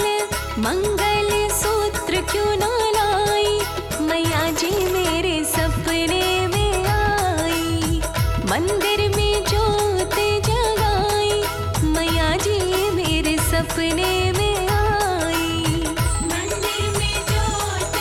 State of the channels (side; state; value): both; identical; correlation 1.00